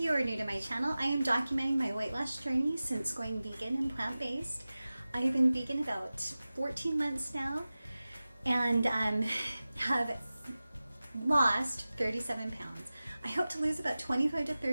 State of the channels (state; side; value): inverted; both; correlation -0.96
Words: are new to my channel, I am documenting my weight loss journey since going vegan and plant-based. I've been vegan about 14 months now and have lost 37 pounds. I hope to lose about 25 to